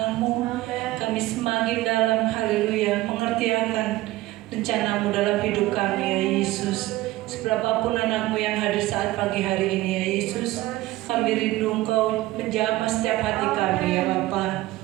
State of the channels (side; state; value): left; quieter; 17.5 dB